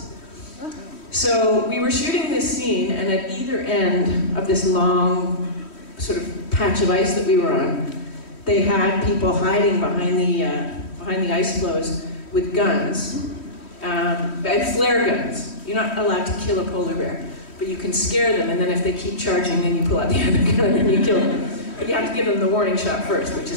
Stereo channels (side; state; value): right; late; 3.1 ms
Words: So we were shooting this scene, and at either end of this long sort of patch of ice that we were on, they had people hiding behind the ice floes with guns. and flare guns. You're not allowed to kill a polar bear, but you can scare them, and then if they keep charging, then you pull out the other gun and you kill them. But you have to give them the warning shot first, which